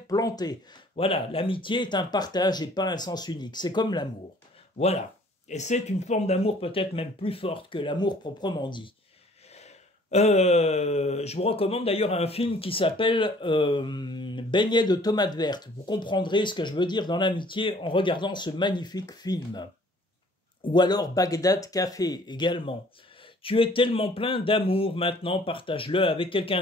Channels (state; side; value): normal; both; correlation 0.56